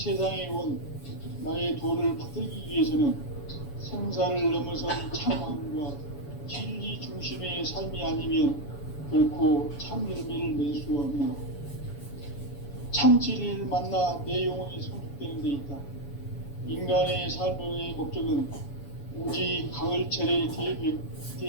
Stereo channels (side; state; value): right; late; 7.1 ms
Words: 온 나의 도를 받들기 위해서는 생사를 넘어선 참함과 진리 중심의 삶이 아니면 결코 참 열매를 낼 수 없노라. 참 진리를 만나 내 영혼이 성숙되는 데 있다. 인간의 삶의 목적은 오직 가을철의